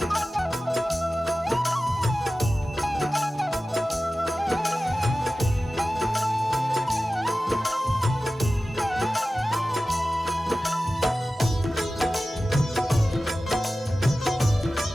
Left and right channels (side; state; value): both; normal; correlation 0.95